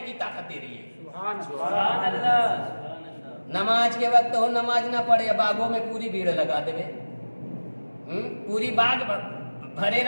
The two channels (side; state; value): both; inverted; correlation -1.00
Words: کی طاقت دے رہی ہے. سبحان اللہ. نماز کے وقت ہو نماز نہ پڑھے باغوں میں پوری بھیڑ لگا دے پوری باغ بھرے